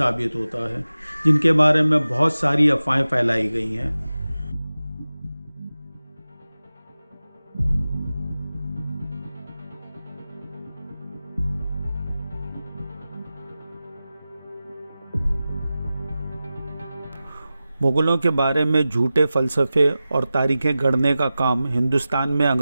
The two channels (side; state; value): both; inverted; correlation -0.95